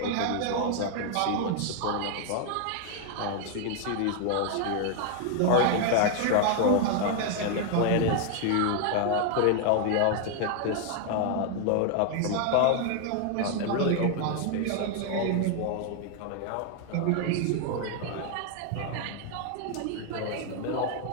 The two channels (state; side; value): different; both; correlation 0.00